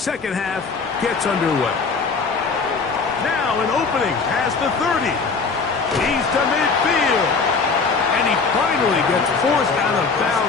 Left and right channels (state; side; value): quieter; right; 4.7 dB